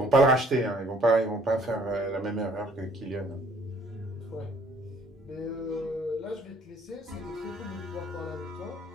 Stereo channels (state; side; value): normal; both; correlation 0.59